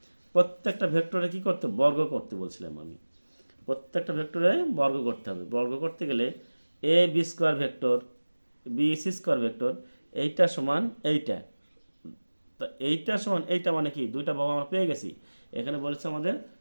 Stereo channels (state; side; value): inverted; both; correlation -1.00